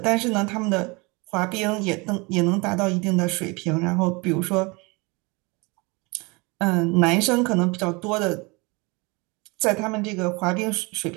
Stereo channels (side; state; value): left; quieter; 27.1 dB